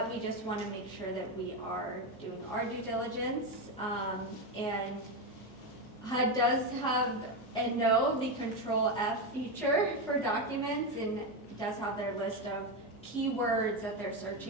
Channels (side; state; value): both; normal; correlation 0.11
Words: we just want to make sure that we are doing our due diligence, and HUD does have and know the Control F feature for documents, and does have their list of keywords that they're